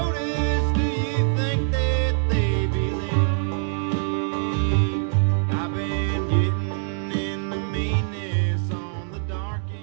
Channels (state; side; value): silent; left; 63 dB below the other